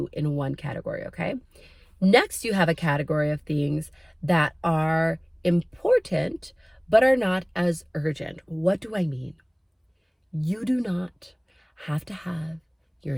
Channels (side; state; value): both; identical; correlation 1.00